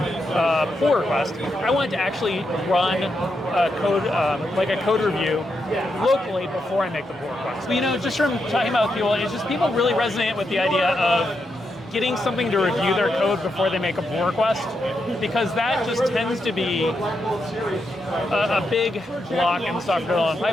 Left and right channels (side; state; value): both; normal; correlation 0.83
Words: pull request. I want to actually run a code, like a code review locally before I make the pull request. But, just from talking about people, it's just people really resonate with the idea of getting something to review their code before they make a pull request, because that just tends to be a big block in the software development